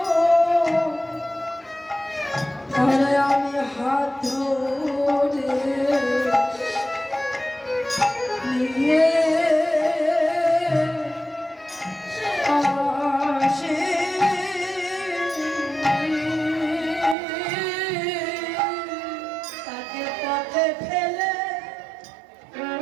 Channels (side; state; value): left; drops out; at 17.2 s